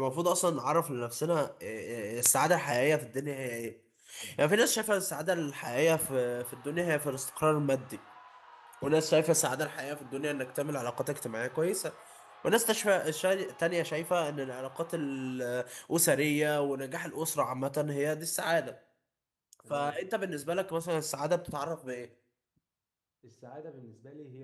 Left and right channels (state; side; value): identical; both; correlation 1.00